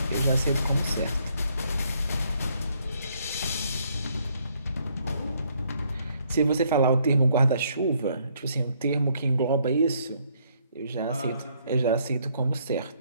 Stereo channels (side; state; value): both; inverted; correlation -0.69